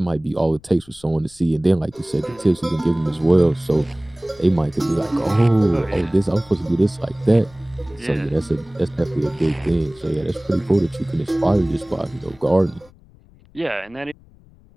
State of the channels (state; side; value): noise; left; rumble, 27 dB below the sound